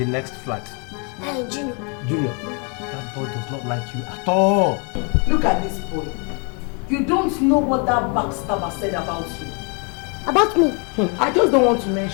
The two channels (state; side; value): quieter; right; 35.4 dB